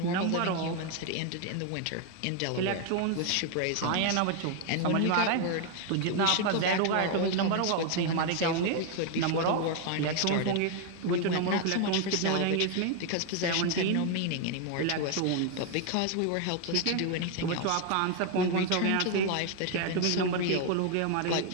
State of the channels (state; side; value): different; both; correlation 0.01